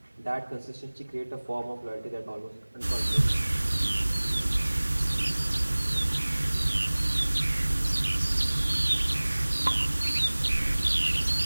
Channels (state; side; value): inverted; both; correlation -1.00